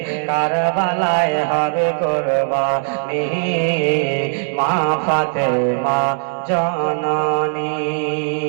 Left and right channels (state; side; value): silent; left; 67 dB below the other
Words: কারবালায় হবে কুরবানি মা ফাতেমা জননী।